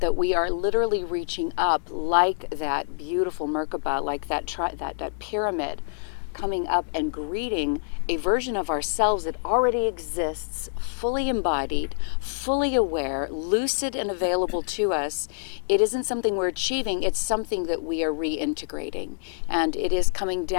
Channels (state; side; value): silent; right; digital silence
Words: that we are literally reaching up like that beautiful Merkaba, like that pyramid, coming up and greeting a version of ourselves that already exists, fully embodied, fully aware, lucid and available to us. It isn't something we're achieving, it's something that we are reintegrating, and it is coming